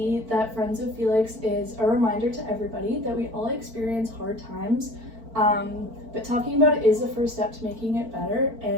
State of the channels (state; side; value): late; left; 4.5 ms